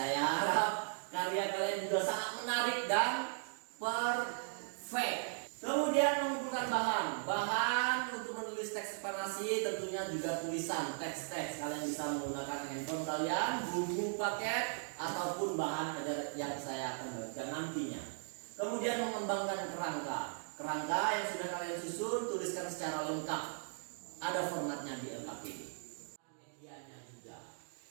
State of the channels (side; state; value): left; silent; digital silence